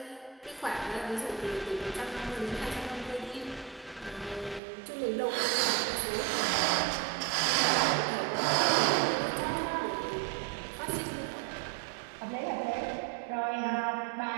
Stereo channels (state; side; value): drops out; left; at 4.6 s